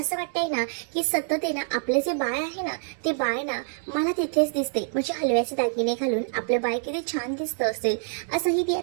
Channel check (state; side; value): silent; left; 61 dB below the other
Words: वाटतंय ना की सतत आहे ना आपलं जे बाळ आहे ना ते बाळ ना मला तिथेच दिसते. म्हणजे हलव्याचे दागिने घालून आपलं बाळ किती छान दिसतं असेल असंही ती